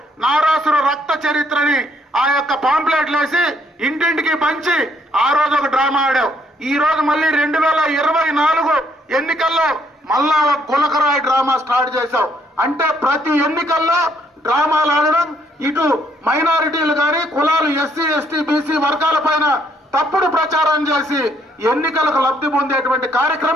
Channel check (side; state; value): both; normal; correlation 0.69